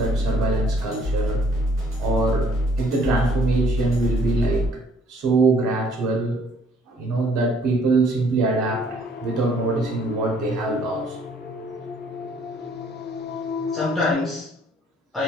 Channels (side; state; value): both; normal; correlation 0.62